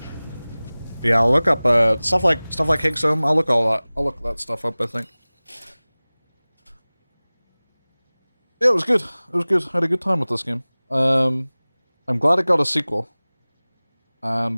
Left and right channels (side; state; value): both; inverted; correlation -0.99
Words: Yeah, I'll look up stuff like Higgs home. I'll look that stuff up, I think. Yeah, it was good. It was good. I had a good time with this game. I'm glad it got a sequel. And